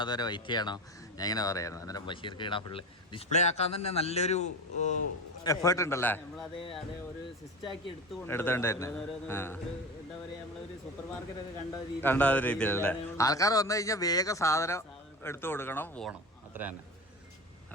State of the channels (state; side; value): normal; both; correlation 0.28